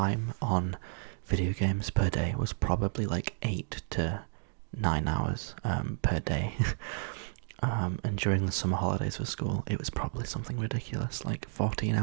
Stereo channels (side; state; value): left; silent; 57 dB below the other